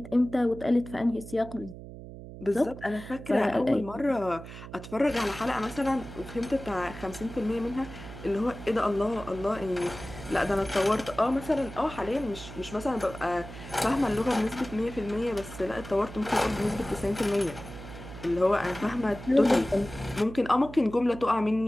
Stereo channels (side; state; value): right; noise; hum, 13 dB below the sound